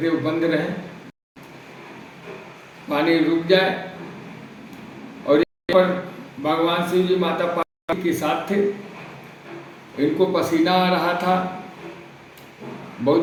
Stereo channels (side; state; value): both; identical; correlation 1.00